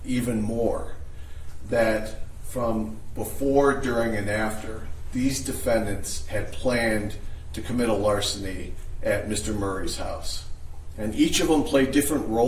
even more, that from before, during, and after, these defendants had planned to commit a larceny at Mr. Murray's house. And each of them played different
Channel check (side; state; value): both; identical; correlation 1.00